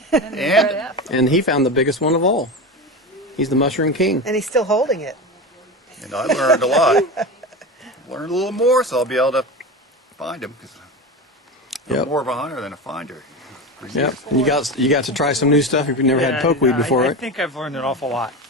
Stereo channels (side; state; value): both; normal; correlation 0.24